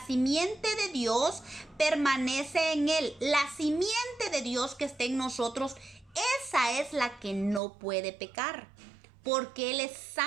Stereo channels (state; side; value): drops out; left; at 7.6 s